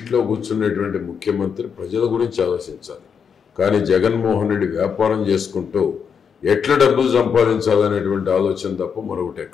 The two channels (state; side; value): quieter; right; 6.8 dB